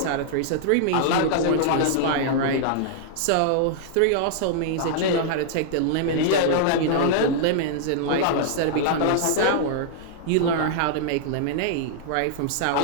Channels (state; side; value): different; both; correlation -0.01